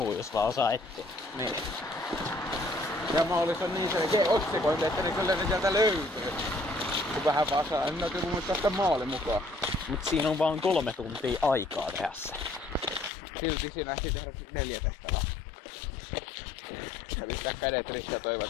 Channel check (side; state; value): right; drops out; at 13.1 s